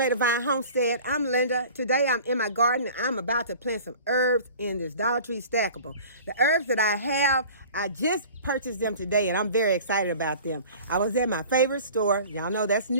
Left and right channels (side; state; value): both; inverted; correlation -0.43